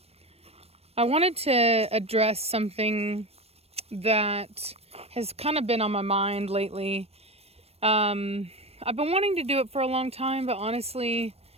I wanted to address something that has kind of been on my mind lately. I've been wanting to do it for a long time, but honestly,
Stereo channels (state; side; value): late; left; 0.29 ms